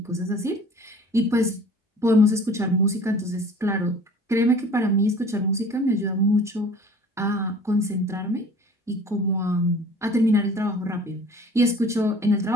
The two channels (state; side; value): normal; both; correlation 0.47